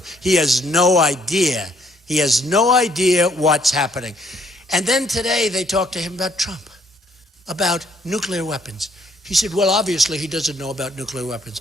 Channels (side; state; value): both; normal; correlation 0.67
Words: He has no idea. He has no idea what's happening. And then today they talked to him about Trump, about nuclear weapons. He said, well, obviously he doesn't know about nuclear